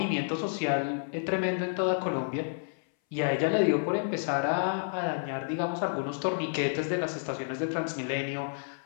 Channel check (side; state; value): right; silent; 58 dB below the other